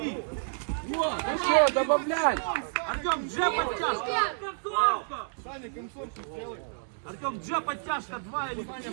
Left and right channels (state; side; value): silent; left; digital silence